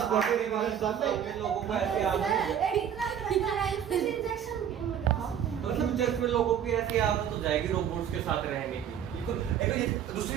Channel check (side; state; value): left; quieter; 9.1 dB